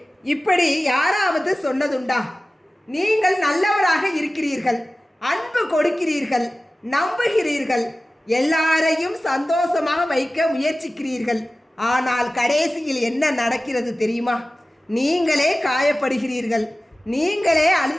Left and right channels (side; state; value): both; normal; correlation 0.96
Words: இப்படி யாராவது சொன்னதுண்டா? நீங்கள் நல்லவராக இருக்கிறீர்கள், அன்பு கொடுக்கிறீர்கள், நம்புகிறீர்கள், எல்லாரையும் சந்தோஷமாக வைக்க முயற்சிக்கிறீர்கள். ஆனால் கடைசியில் என்ன நடக்கிறது தெரியுமா? நீங்களே காயப்படுகிறீர்கள், நீங்களே